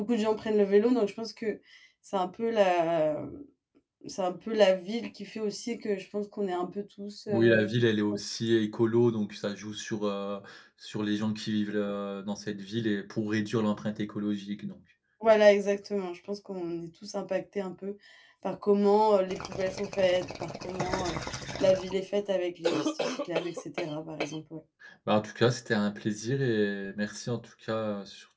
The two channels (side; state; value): both; identical; correlation 1.00